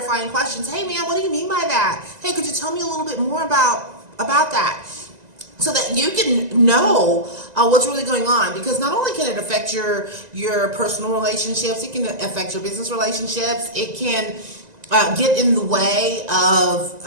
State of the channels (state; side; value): late; left; 1.9 ms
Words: questions. "Hey man, what do you mean by that? Hey, could you tell me a little bit more about that?" So that you can know what's really going on. Because not only can it affect your personal relationships, it can affect your business relationships. It can get in the way of